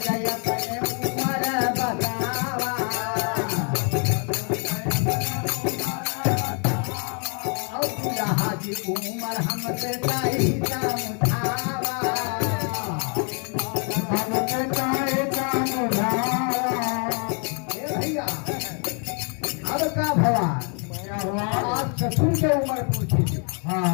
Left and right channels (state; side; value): quieter; right; 39.1 dB